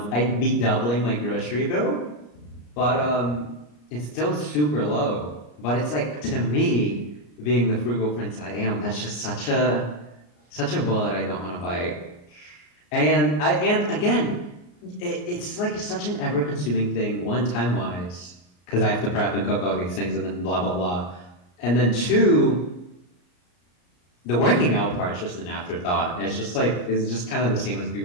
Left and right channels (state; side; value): late; right; 34 ms